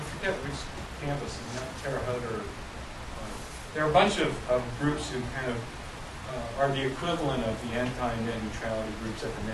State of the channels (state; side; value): identical; both; correlation 1.00